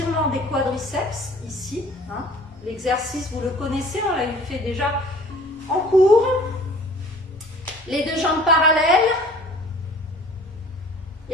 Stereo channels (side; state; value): both; normal; correlation 0.49